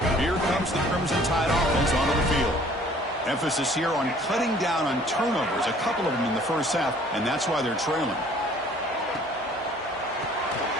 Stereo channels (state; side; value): normal; both; correlation 0.55